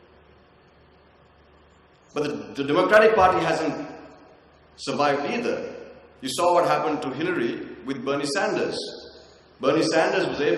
But the Democratic Party hasn't survived either. You saw what happened to Hillary with Bernie Sanders. Bernie Sanders was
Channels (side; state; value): both; identical; correlation 1.00